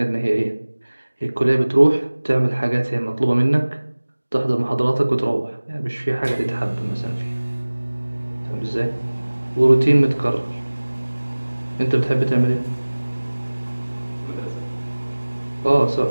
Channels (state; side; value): inverted; both; correlation -1.00